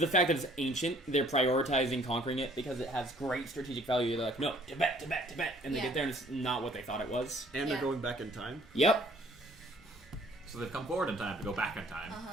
fact that it's ancient, they're prioritizing conquering it because it has great strategic value. They're like, no, Tibet, Tibet, Tibet. And they Yeah. get there and it's not what they thought it was. And they're Yeah. going back in time. Yep. So they've come forward in time to go back in time.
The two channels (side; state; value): both; normal; correlation 0.58